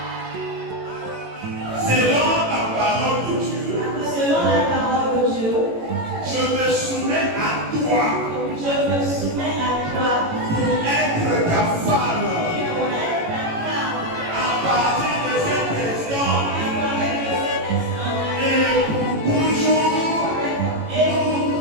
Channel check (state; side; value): late; left; 18 ms